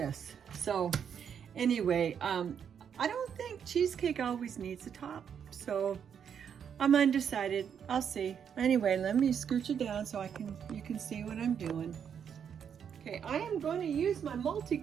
So anyway, I don't think cheesecake always needs a top, so I'm undecided. I'll see. Anyway, let me scooch it down so you can see what I'm doing. Okay, I am going to use my multi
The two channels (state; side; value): quieter; left; 7.8 dB